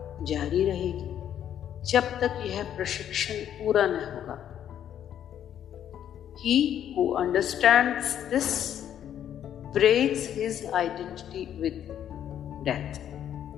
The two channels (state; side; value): quieter; right; 10.1 dB